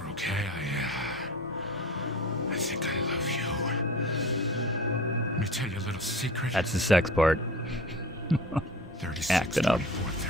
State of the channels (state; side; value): normal; both; correlation 0.37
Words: okay? I think I love you. Let me tell you a little secret. That's the sex part. 36, Acting up. 24,